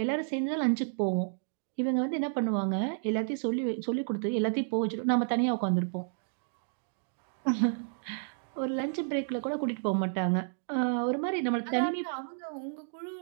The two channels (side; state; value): left; silent; digital silence